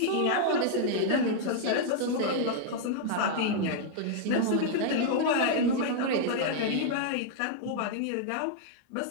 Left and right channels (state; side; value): different; both; correlation 0.00